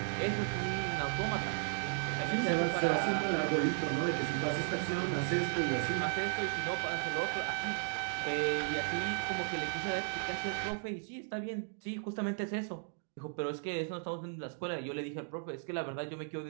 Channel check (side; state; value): left; silent; digital silence